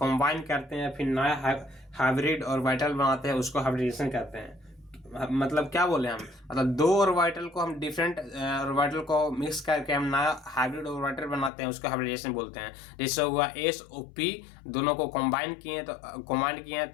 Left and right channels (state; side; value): drops out; right; at 11.5 s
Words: करते हैं, फिर नया हाइब्रिड और वाइटल बनाते हैं, उसको हाइब्रिडेशन कहते हैं। मतलब क्या बोले हम, मतलब दो ऑर्बिटल को हम डिफरेंट ऑर्बिटल को मिक्स करके हम नया हाइब्रिड ऑर्बिटल बनाते हैं, उसको हाइब्रिडेशन बोलते हैं। जैसे हुआ एस और पी, दोनों को कंबाइन किए